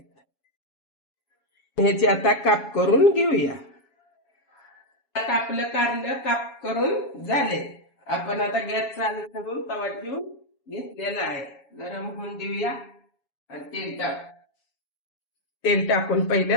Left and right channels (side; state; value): right; late; 7.2 ms